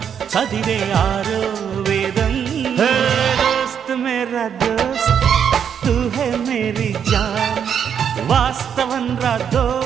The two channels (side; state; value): left; quieter; 8.0 dB